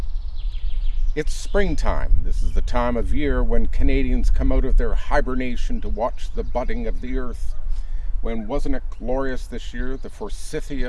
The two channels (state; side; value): identical; both; correlation 1.00